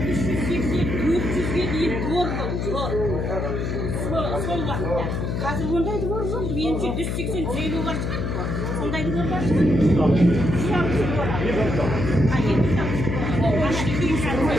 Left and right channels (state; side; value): noise; left; hum, 1 dB below the sound